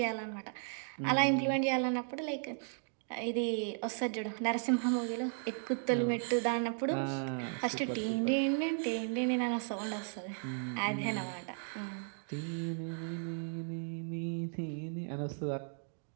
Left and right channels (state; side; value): silent; left; 54 dB below the other